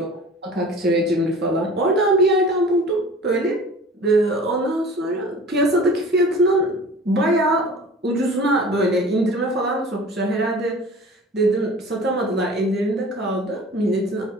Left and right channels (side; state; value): both; normal; correlation 0.42